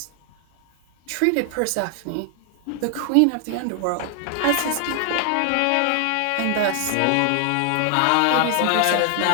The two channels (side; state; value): both; different; correlation 0.00